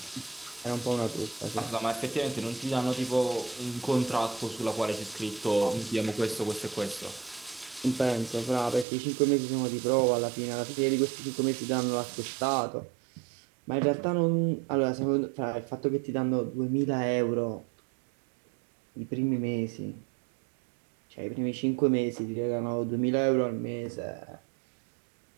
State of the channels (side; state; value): left; drops out; at 8.8 s